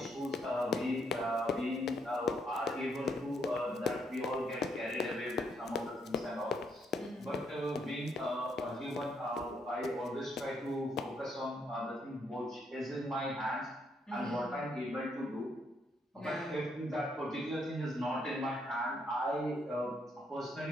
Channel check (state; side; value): normal; both; correlation 0.74